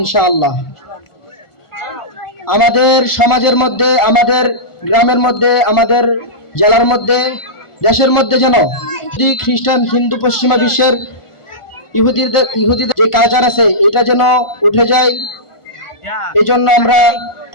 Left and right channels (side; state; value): right; late; 1.4 ms